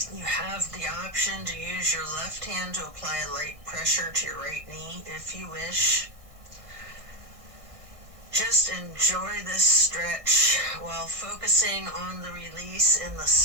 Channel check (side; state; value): left; late; 1.6 ms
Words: You have the option to use your left hand to apply a light pressure to your right knee if you wish. Just enjoy this stretch while focusing on the release in the